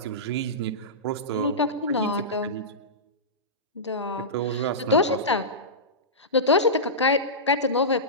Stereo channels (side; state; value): both; normal; correlation -0.17